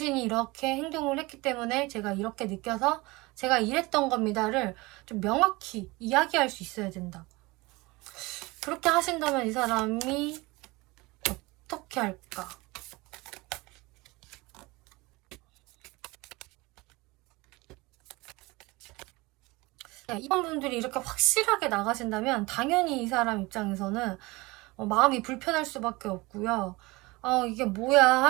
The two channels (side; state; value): left; quieter; 22.9 dB